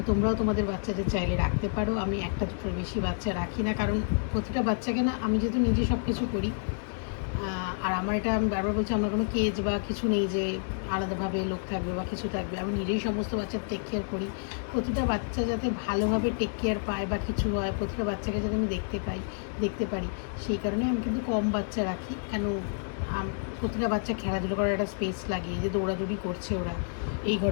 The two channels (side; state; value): right; silent; digital silence